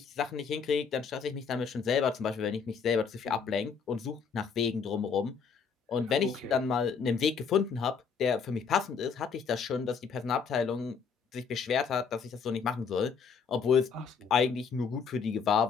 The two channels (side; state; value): right; quieter; 6.0 dB